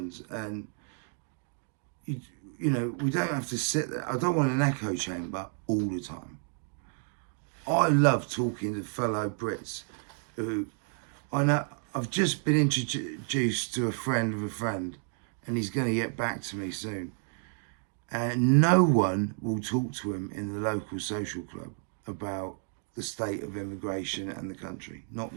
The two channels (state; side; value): silent; left; 57 dB below the other